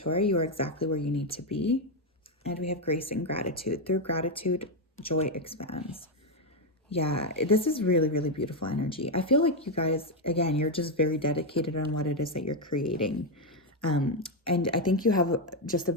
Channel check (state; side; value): normal; both; correlation 0.04